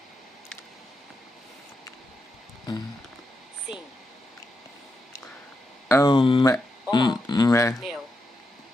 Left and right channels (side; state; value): both; normal; correlation 0.86